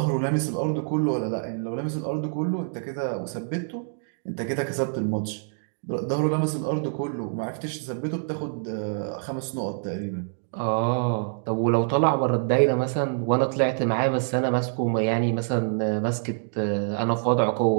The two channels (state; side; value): silent; left; digital silence